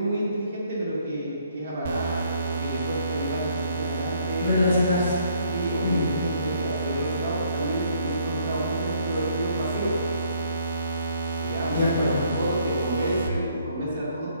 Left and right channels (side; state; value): both; inverted; correlation -0.65